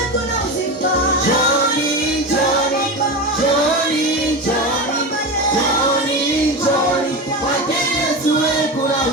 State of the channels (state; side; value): normal; both; correlation 0.22